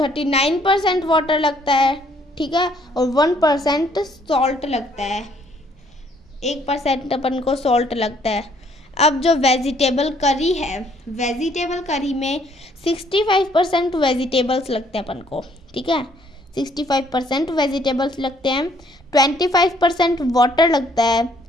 वाटर लगता है, ठीक है, और 1% सॉल्ट लगता है, 1% अपन को सॉल्ट लगता है। अब जो वेजिटेबल करी है, वेजिटेबल करी में 65% वेजिटेबल्स लगते हैं अपन को, ठीक है, 65% वेजिटेबल्स लगते हैं, 25% वाटर लगता है,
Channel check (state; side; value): normal; both; correlation 0.65